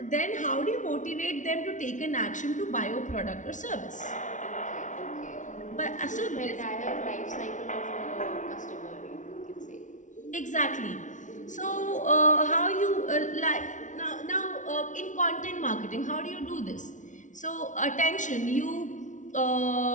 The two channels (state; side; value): late; right; 0.37 ms